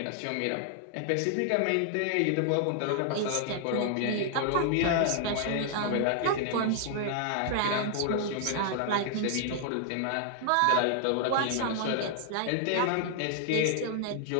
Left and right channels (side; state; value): both; different; correlation -0.01